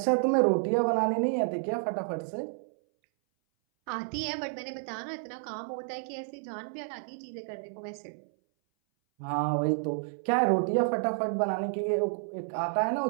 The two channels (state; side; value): silent; left; 58 dB below the other